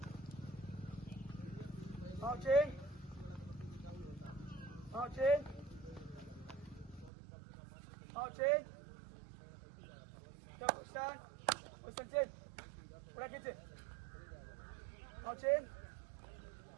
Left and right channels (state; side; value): drops out; left; at 7.1 s